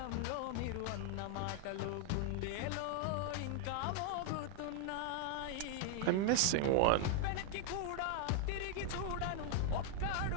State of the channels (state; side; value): different; both; correlation 0.00